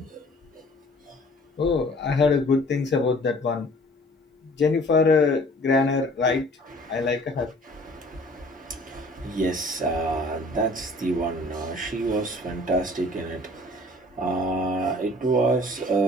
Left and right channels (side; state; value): both; normal; correlation 0.51